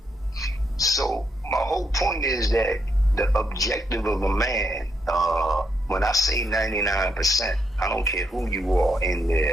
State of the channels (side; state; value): both; normal; correlation 0.78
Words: So my whole point is that the objective of a man, when I say 99%, I don't care who you are in